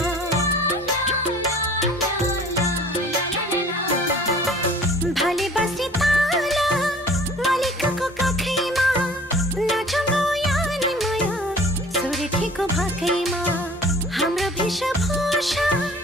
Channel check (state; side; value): normal; both; correlation 0.48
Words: भाले बस्ने ताला मालिकको काखैमा, नाचौँ यानी माया सुर्खेको भाकैमा। हाम्रो वेशभूषा